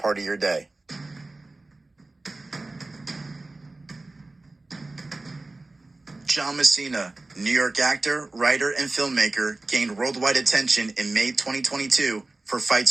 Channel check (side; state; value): left; quieter; 3.1 dB